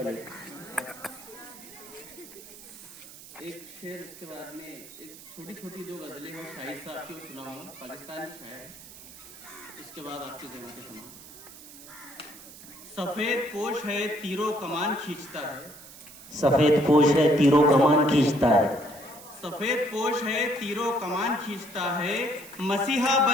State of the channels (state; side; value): noise; right; hiss, 17 dB below the sound